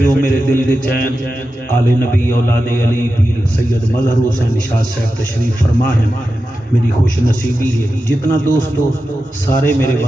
ہو میرے دل دے چین آل نبی اولاد علی پیر سید مظہر حسین شاہ صاحب تشریف فرما ہیں۔ میری خوش نصیبی ہے جتنا دوست ہو سارے میرے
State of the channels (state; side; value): normal; both; correlation 0.91